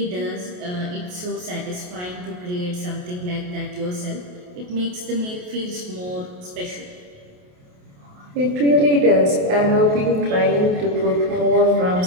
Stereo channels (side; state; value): left; late; 28 ms